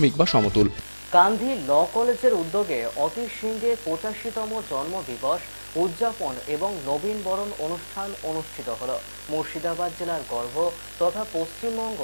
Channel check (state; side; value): inverted; both; correlation -1.00